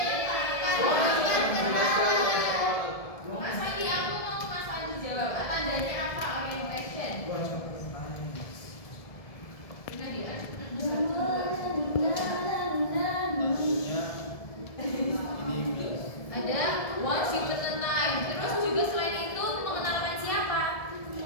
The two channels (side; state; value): right; late; 1.7 ms